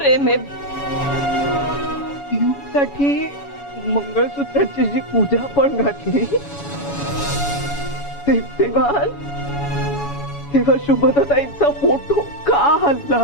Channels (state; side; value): late; right; 7.1 ms